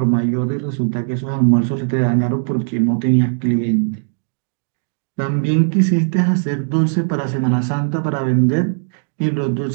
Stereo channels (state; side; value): silent; left; digital silence